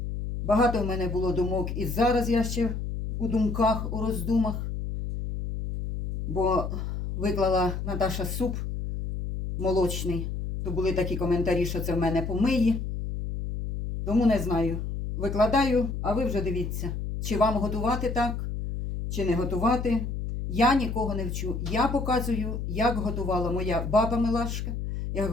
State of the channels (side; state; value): left; noise; hum, 4 dB below the sound